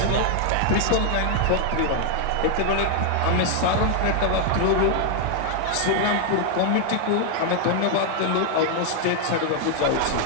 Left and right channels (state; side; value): different; both; correlation 0.00